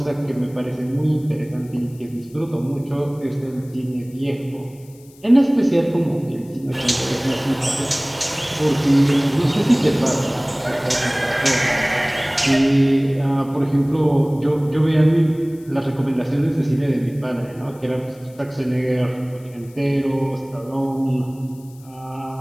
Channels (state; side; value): noise; left; hiss, 27 dB below the sound